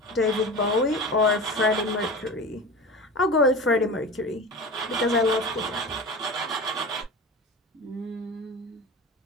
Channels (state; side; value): normal; both; correlation 0.31